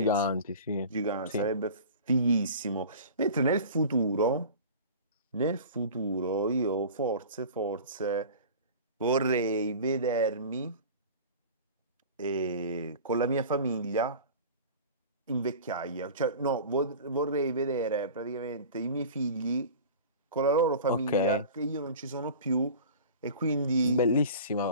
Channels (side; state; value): both; inverted; correlation -0.38